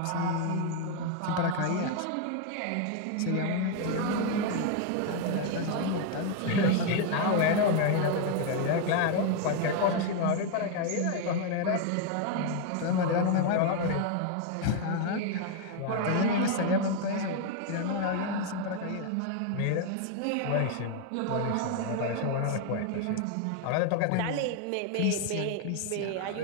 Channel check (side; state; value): both; different; correlation 0.01